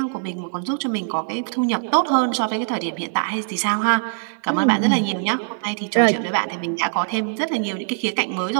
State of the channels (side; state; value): left; silent; 58 dB below the other